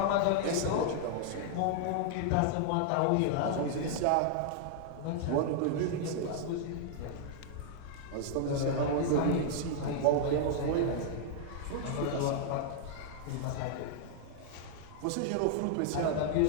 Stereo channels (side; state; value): both; different; correlation -0.01